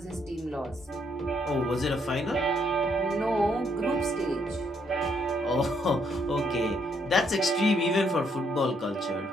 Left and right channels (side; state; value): both; normal; correlation 0.72